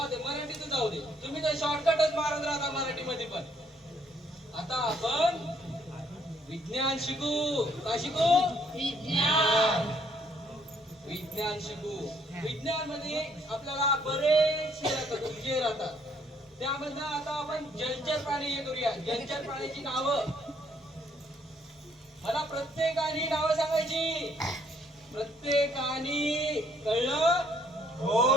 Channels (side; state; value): both; normal; correlation 0.66